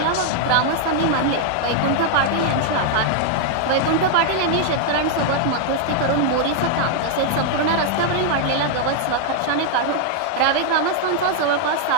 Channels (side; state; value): both; different; correlation -0.01